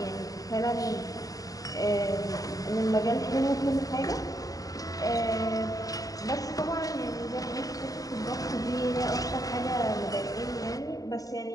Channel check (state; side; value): late; right; 0.17 ms